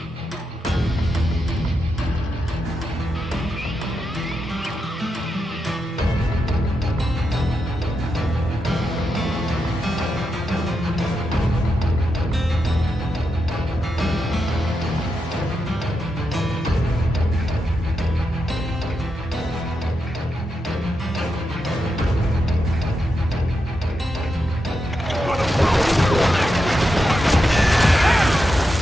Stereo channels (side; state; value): both; normal; correlation 0.86